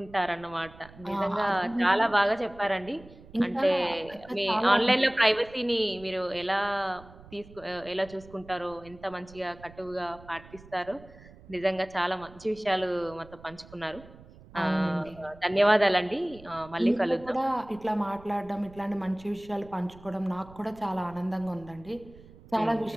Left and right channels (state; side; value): noise; right; rumble, 21 dB below the sound